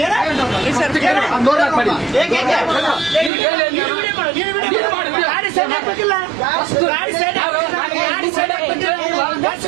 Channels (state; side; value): drops out; left; at 3.3 s